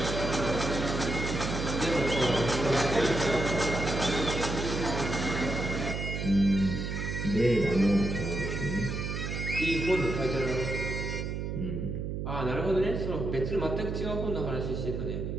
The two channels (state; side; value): noise; right; hum, 3 dB below the sound